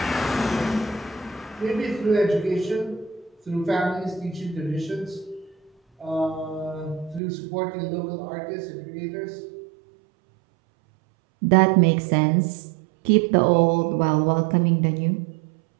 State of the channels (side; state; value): left; drops out; at 7.2 s